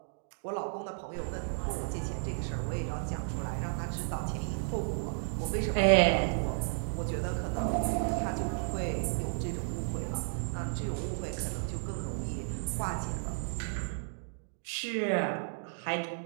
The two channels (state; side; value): silent; left; digital silence